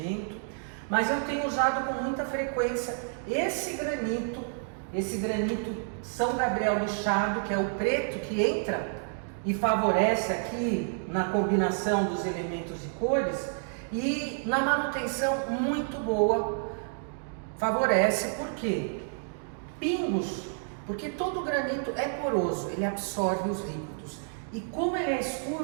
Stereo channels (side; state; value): left; silent; digital silence